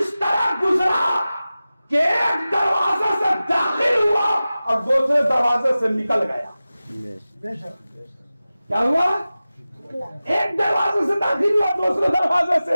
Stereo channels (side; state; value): both; inverted; correlation -0.96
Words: तरह गुजरा कि एक दरवाजे से दाखिल हुआ और दूसरे दरवाजे से निकल गया। क्या हुआ? एक दरवाजे से दाखिल हुआ, दूसरे दरवाजे से